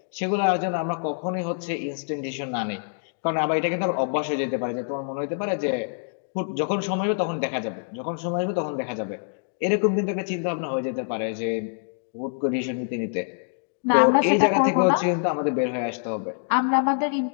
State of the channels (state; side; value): silent; right; digital silence